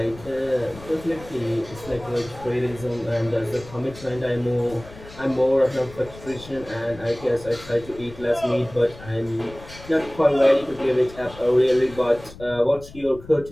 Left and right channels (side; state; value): left; noise; rumble, 18 dB below the sound